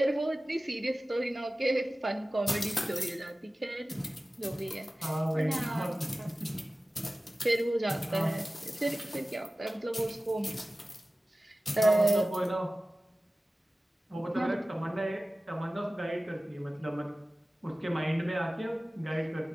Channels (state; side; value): normal; both; correlation 0.96